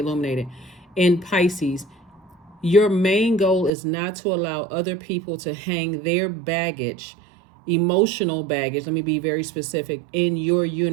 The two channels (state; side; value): drops out; left; at 3.7 s